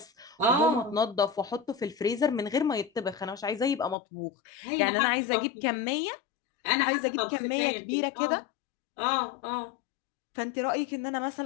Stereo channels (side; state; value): right; drops out; at 4.0 s